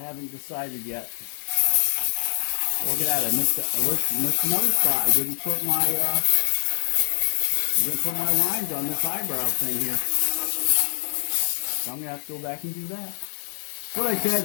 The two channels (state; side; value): silent; right; digital silence